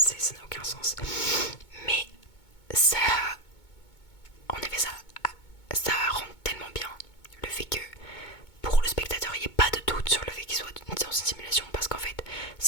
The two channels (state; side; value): late; right; 2.2 ms